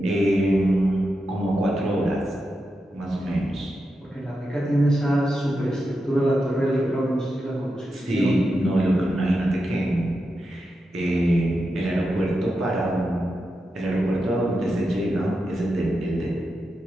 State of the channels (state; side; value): normal; both; correlation 0.88